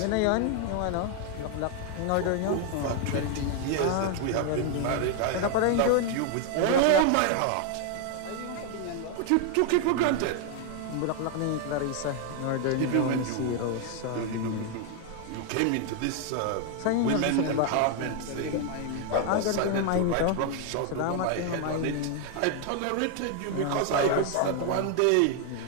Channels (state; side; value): different; both; correlation 0.00